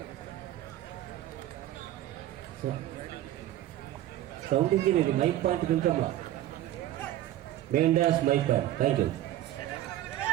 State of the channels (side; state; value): left; quieter; 13.4 dB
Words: సౌండ్ ఇంజనీర్ మైక్ పాయింట్ కొంచెమ్మా. Main dash mic point. Thank you.